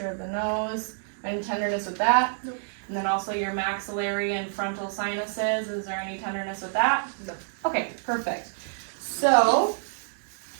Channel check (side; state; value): left; silent; digital silence